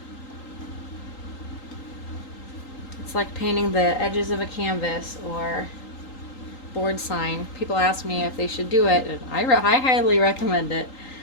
It's like painting the edges of a canvas or board sign. People ask me if they should do it, and I highly recommend it.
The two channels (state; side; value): late; right; 3.8 ms